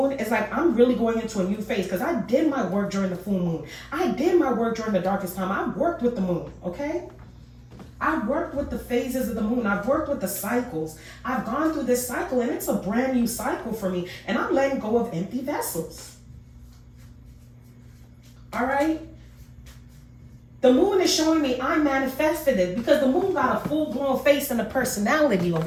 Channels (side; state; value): both; identical; correlation 1.00